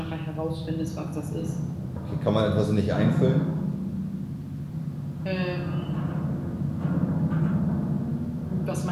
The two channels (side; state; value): both; identical; correlation 1.00